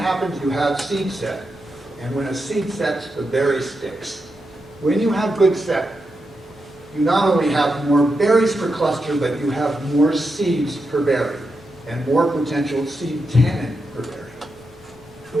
you have seed set. And when a seed sets, the berry sticks. When you have good set, you not only have more berries per cluster, but you have more seeds per berry and more potential seed tannin per berry.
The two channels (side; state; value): both; normal; correlation 0.87